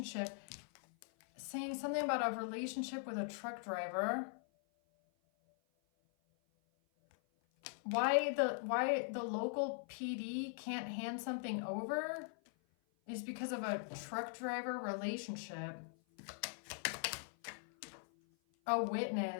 Saying something about a relationship with a truck driver. Why the local PD can't hand something over is because of a truck driver relationship. A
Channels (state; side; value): silent; right; 50 dB below the other